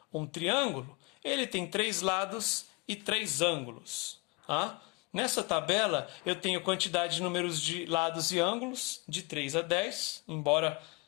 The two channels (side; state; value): right; quieter; 27.0 dB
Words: um triângulo, ele tem 3 lados e 3 ângulos. Tá? Nessa tabela, eu tenho quantidade de números de lados e ângulos de 3 a 10, embora